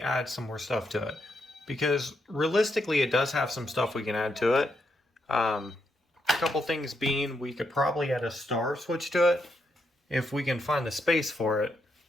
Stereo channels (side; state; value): both; normal; correlation 0.80